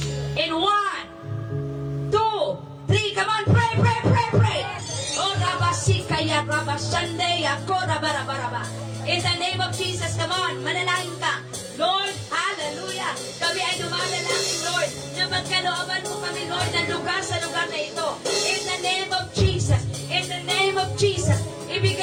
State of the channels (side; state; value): both; identical; correlation 1.00